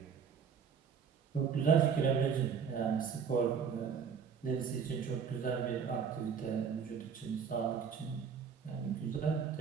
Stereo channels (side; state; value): left; quieter; 6.8 dB